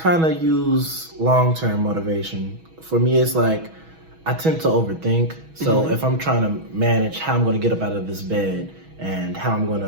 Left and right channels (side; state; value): left; late; 6.2 ms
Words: of use long-term motivation. For me, it's like I tend to overthink. So if I'm trying to manage how I'm going to get up out of this bed and how I'm going